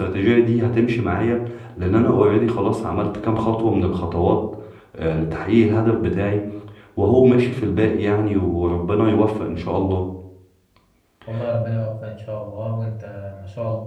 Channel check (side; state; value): both; identical; correlation 1.00